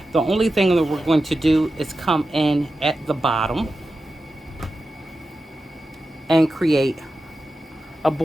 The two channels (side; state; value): both; normal; correlation 0.92